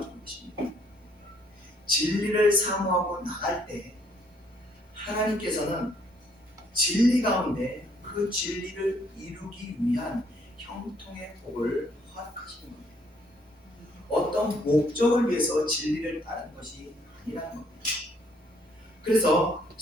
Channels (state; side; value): normal; both; correlation 0.66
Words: 것입니다. 진리를 사모하고 나갈 때 하나님께서는 진리 가운데 그 진리를 이루기 위한 형통의 복을 허락하시는 겁니다. 어떤 목적을 위해서 진리를 따르는 것이 아니라는 겁니다. 그래서